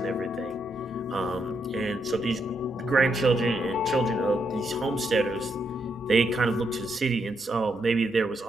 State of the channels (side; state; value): both; normal; correlation 0.79